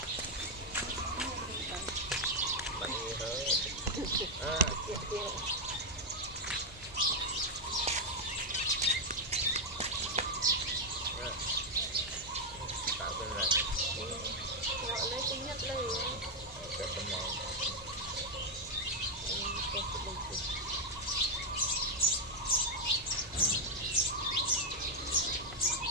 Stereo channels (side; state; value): both; normal; correlation 0.02